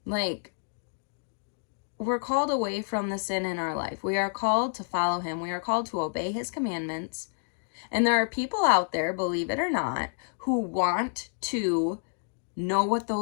Like, we're called away from the sin in our life. We are called to follow him. We are called to obey his commandments. And there are people out there, believe it or not, who want to know what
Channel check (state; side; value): silent; right; digital silence